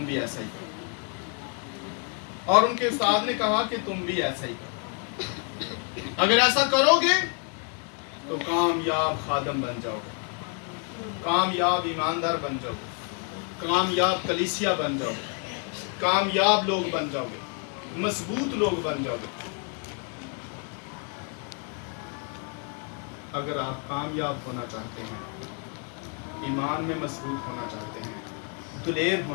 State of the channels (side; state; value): right; quieter; 38.8 dB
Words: भी ऐसा ही करो, और उनके उस्ताद ने कहा कि तुम भी ऐसा ही करो। अगर ऐसा करोगे तो कामयाब खादम बन जाओगे, कामयाब ईमानदार बन जाओगे, कामयाब कलीसिया बन जाओगे, कामयाब लोग बन जाओगे, मजबूत लोग बन जाओगे। अगर आप कामयाब होना चाहते हैं, ईमान में मजबूत होना चाहते हैं, दुलेर